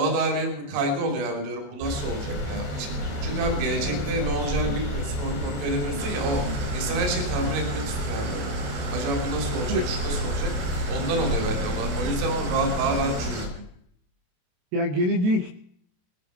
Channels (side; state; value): left; late; 28 ms